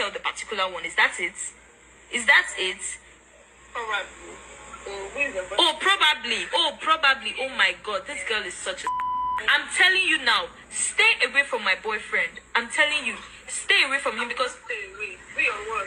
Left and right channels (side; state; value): both; identical; correlation 1.00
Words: the particular one. Is that it? Is that it? Probably. Probably. Oh my God, this girl is such a. I'm telling you now, stay away from my boyfriend. I'm telling you, stay away from him, because. Stay away. We are what?